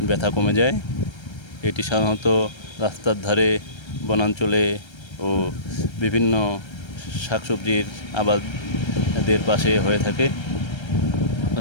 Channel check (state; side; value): late; right; 1.3 ms